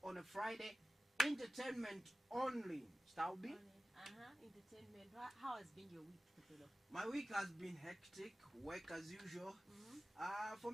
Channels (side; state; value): both; normal; correlation 0.95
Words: on a Friday. Entertainment only. Staubi? Entertainment. How has been your week, Sapelo? My week has been hectic. Work as usual.